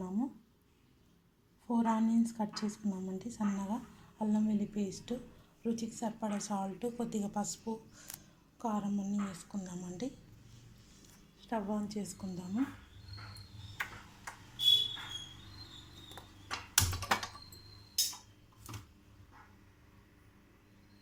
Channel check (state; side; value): identical; both; correlation 1.00